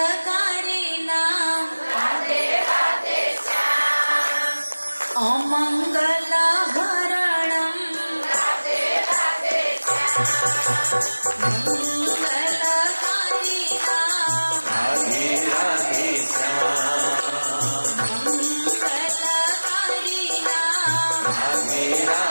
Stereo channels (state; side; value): inverted; both; correlation -1.00